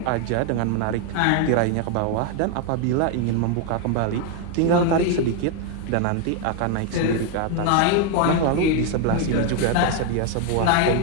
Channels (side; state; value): both; different; correlation 0.01